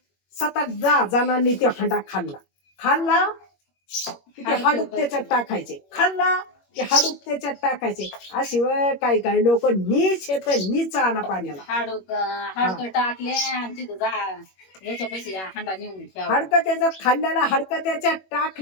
7-8 जणांनी ते हांडा खाल्ला की ते हाडूक त्याच्यात टाकायचे, खाल्ला की हाडूक त्याच्यात टाकायचे. अशी काही काही लोक नीच येत नीच आणा पाण्याला. हाडकं टाकले आणि तिथं याच्या पैसे हांडा नेऊन हाडकं त्याच्यात खाल्ल्याला हाडकं त्याच्यात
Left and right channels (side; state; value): right; late; 21 ms